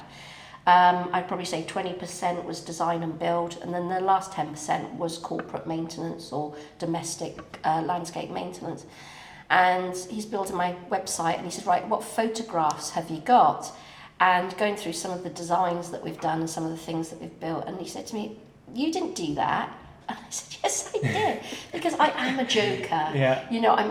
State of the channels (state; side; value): identical; both; correlation 1.00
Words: I'd probably say 20% was design and build, and then the last 10% was corporate maintenance or domestic landscape maintenance. And he's building my website, and he said, right, what photographs have you got? And going through some of the designs that we've done and some of the things that we've built, and he said to me, you didn't do that. And I said, yes, I did, because I am a joker. Yeah. You know, I'm